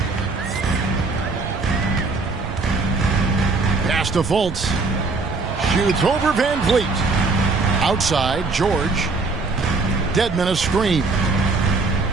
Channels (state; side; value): quieter; left; 3.9 dB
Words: Pass to Fultz. Shoots over Van Vliet. Outside, George. Dedmon a screen.